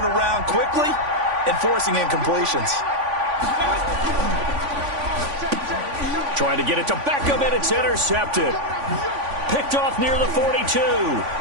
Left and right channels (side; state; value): left; late; 3.5 ms